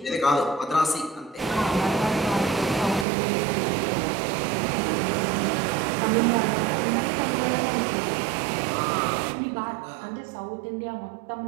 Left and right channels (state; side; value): drops out; left; at 3.1 s